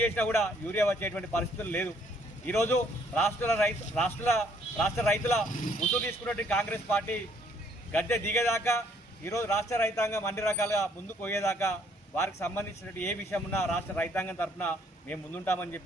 చేసినా కూడా యూరియా వచ్చేటువంటి పరిస్థితులు లేదు. ఈరోజు రాష్ట్ర రైతుల ముసుగు తీసుకున్నటువంటి కాంగ్రెస్ పార్టీ గద్దె దిగేదాకా ఈరోజు రాష్ట్ర రైతాంగం అన్ని రకాలుగా ముందుకు పోయేదాకా వారికి సంబంధించినటువంటి ఏ విషయం ఉన్నా రాష్ట్ర రైతాంగం తరఫున మేము ముందుంటామని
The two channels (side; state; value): both; normal; correlation 0.65